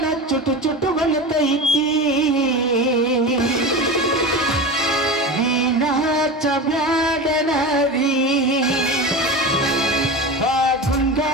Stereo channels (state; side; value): normal; both; correlation 0.27